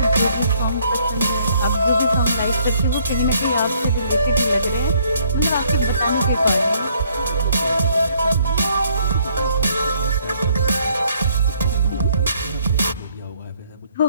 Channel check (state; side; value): inverted; both; correlation -0.66